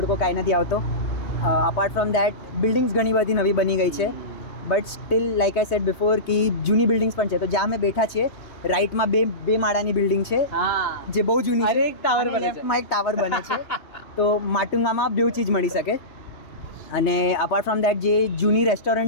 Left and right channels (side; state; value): right; late; 3.2 ms